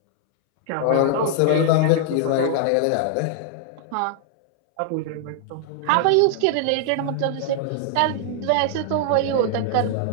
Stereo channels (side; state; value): both; different; correlation -0.01